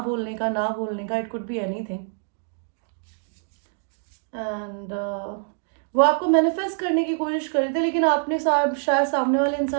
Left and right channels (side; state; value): left; silent; 62 dB below the other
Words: बोलने का, ना बोलने का, it could be anything. And वो आपको मैनिफेस्ट करने की कोशिश कर रहे थे, लेकिन आपने शायद सामने वाले